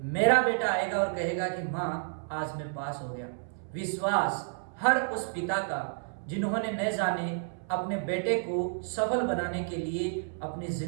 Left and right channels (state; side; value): silent; left; 57 dB below the other